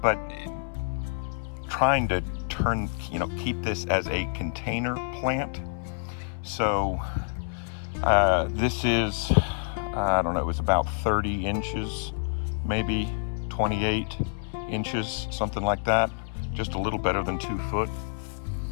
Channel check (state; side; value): silent; right; 60 dB below the other